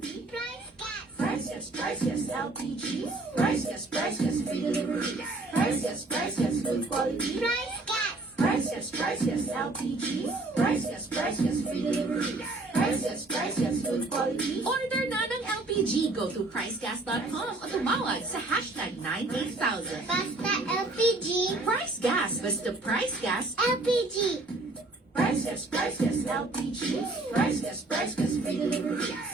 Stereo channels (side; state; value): left; quieter; 3.1 dB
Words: Price yes, LPG. Price yes, free delivery. Price yes, good quality. Price yes, LPG. Price yes, free delivery. Price yes, good quality. Order na ng LPG. Go to pricegas.com o tumawag sa hashtag 98000. Basta LPG. Price Gas. Basta Price Gas. LPG. Price yes, LPG. Price yes, free delivery.